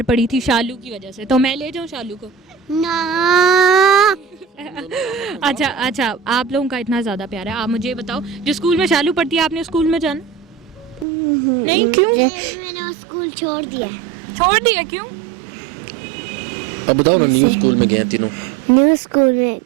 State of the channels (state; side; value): drops out; left; at 11.1 s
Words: पड़ी थी? शालू की वजह से। तो मैं ले जाऊँ शालू को? ना। अच्छा आप लोगों का इतना ज्यादा प्यार है। आप मुझे बताओ जो स्कूल में शालू पढ़ती है आपने स्कूल में जाना? नहीं क्यों? मैंने स्कूल छोड़ दिया। छोड़ दिया क्यों? अब बताओ ना, न्यू स्कूल में गए तीनों। न्यू स्कूल में